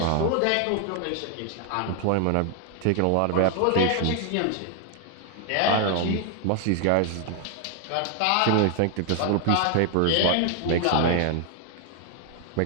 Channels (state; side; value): different; both; correlation 0.00